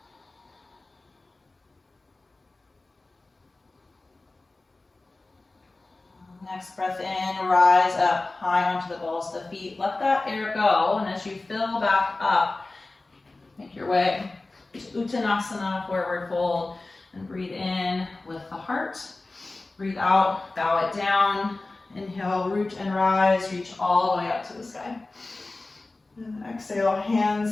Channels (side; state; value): right; quieter; 3.2 dB